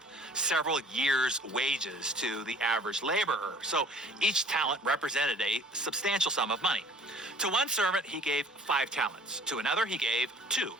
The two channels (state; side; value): normal; both; correlation 0.52